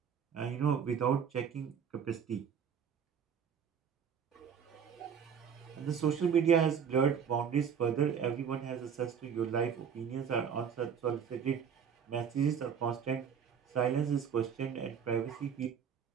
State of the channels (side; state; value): left; quieter; 7.4 dB